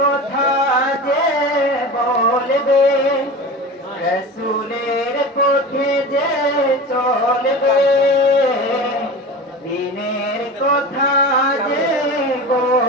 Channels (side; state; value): both; normal; correlation 0.31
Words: যে বলবে, রসুলের পথে যে চলবে, দিনের কথা যে